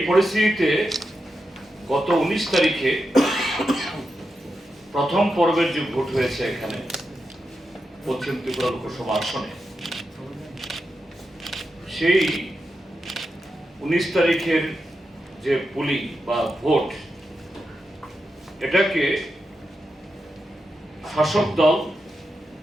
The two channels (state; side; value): normal; both; correlation 0.88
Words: পরিস্থিতিতে গত 19 তারিখে প্রথম পর্বের যে ভোট হয়েছে এখানে পশ্চিম ত্রিপুরা লোকসভা আসনে, সেই 19 তারিখের যে পোলিং বা ভোট, এটাকে শাসক দল